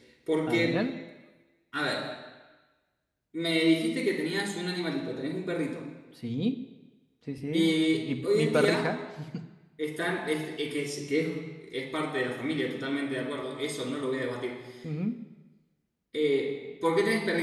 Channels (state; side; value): identical; both; correlation 1.00